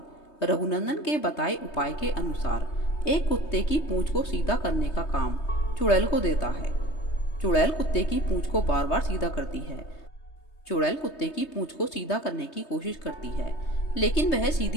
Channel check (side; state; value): right; late; 3.2 ms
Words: रघुनंदन के बताए उपाय के अनुसार एक कुत्ते की पूंछ को सीधा करने का काम चुड़ैल को देता है। चुड़ैल कुत्ते की पूंछ को बार बार सीधा करती है। चुड़ैल कुत्ते की पूंछ को सीधा करने की कोशिश करती है, लेकिन वह